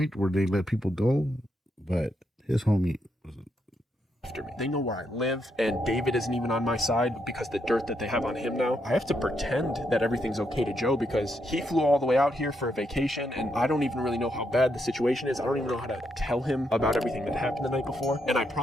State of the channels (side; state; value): both; normal; correlation 0.79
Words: where they let people go, but his homie was after me. They know where I live, and David isn't even on my side because the dirt that they have on him now. I have to pretend that everything's okay to Joe because he flew all the way out here for a vacation, and I don't even really know how bad the situation is. I don't even know how to tell him about everything that happened the night before. And I